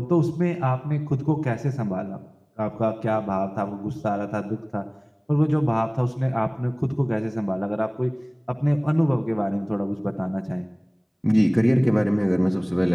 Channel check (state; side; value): identical; both; correlation 1.00